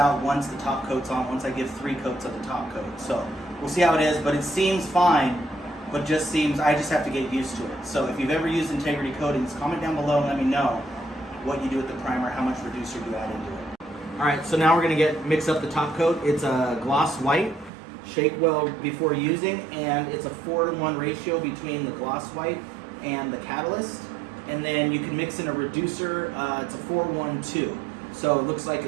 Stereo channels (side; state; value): left; drops out; at 17.7 s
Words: once the top coat's on, once I give 3 coats of the top coat. So we'll see how it is, but it seems fine, but just seems, I just have to get used to it. So if you've ever used integrity coatings, comment down below and let me know what you do with the primer, how much reducer you add into it. Alright, so now we're going to mix up the top coat. It's a gloss white. Shake well before using, and it's a 4-to-1 ratio between the gloss white and the catalyst. And then you can mix in a reducer. It's a 4-1-2. So it looks like